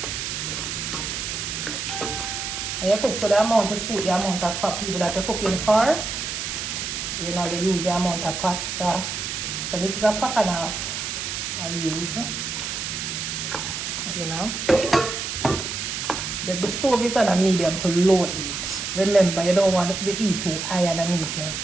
And you cook to the amount of suit, the amount of fat people that you're cooking for. You know, you use the amount of pasta. So this is a pack and a half I'll use. You know. The stove is on a medium to low heat. Remember, you don't want the heat too high underneath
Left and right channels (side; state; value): right; noise; hiss, 4 dB below the sound